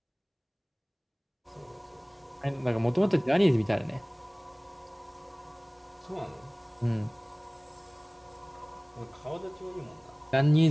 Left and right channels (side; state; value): both; identical; correlation 1.00